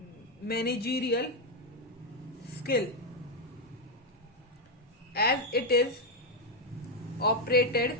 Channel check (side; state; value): both; normal; correlation 0.04